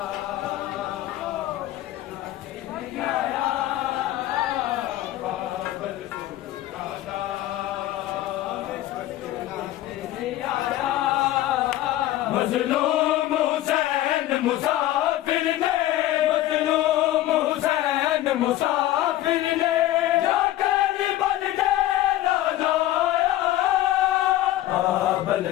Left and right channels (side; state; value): right; quieter; 14.5 dB